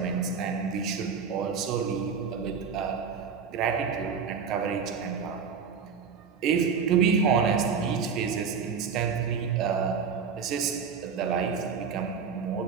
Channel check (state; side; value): quieter; left; 6.2 dB